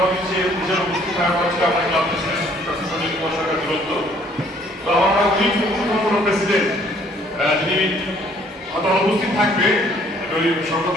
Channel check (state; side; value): normal; both; correlation 0.61